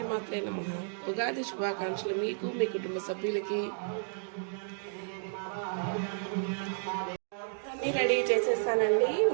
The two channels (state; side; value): silent; left; digital silence